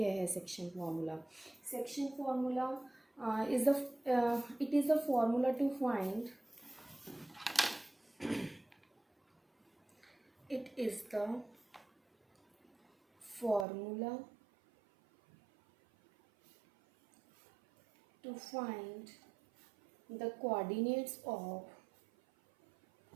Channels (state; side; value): drops out; left; at 13.7 s